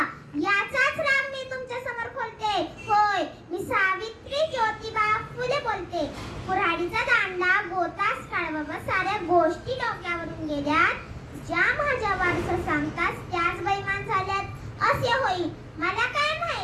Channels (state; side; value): identical; both; correlation 1.00